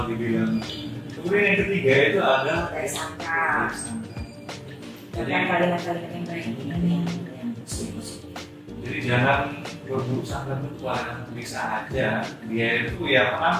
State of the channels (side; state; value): both; identical; correlation 1.00